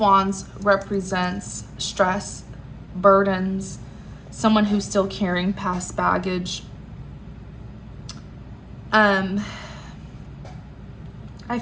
represents stress, burdens, someone who's still carrying past baggage. I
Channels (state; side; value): identical; both; correlation 1.00